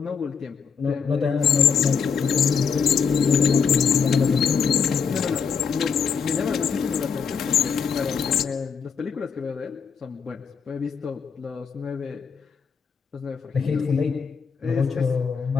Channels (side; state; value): right; quieter; 6.3 dB